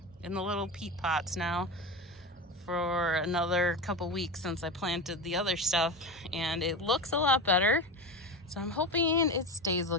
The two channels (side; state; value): both; normal; correlation 0.22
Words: in the little peat pots now for another couple weeks since I planted the other stuff, and it looks a lot better. So I'm hoping it stays